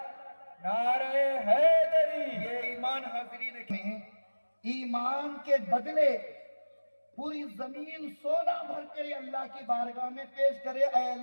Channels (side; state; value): both; inverted; correlation -1.00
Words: نعرہ حیدری. یہ ایمان حاضرین کے ہیں. ایمان کے بدلے پوری زمین سونا بھر کے اللہ کی بارگاہ میں پیش کرے. اے